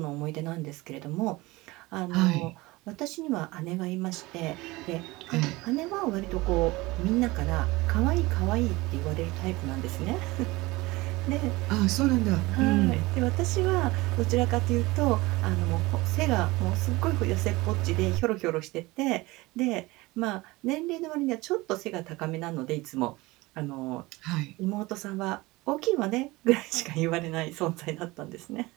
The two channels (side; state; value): left; quieter; 21.4 dB